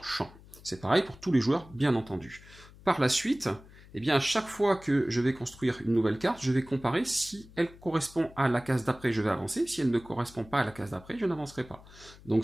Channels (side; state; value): left; noise; hum, 21 dB below the sound